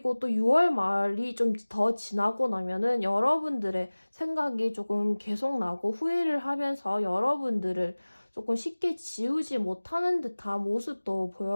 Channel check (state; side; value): inverted; both; correlation -1.00